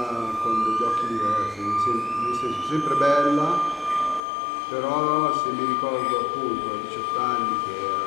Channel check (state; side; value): drops out; right; at 4.2 s